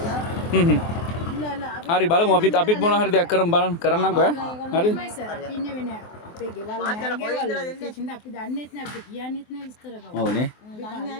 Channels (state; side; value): late; right; 23 ms